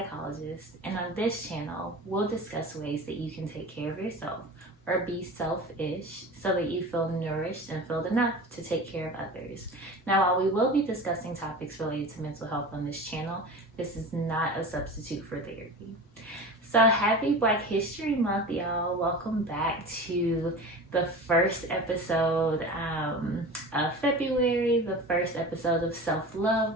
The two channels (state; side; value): normal; both; correlation 0.33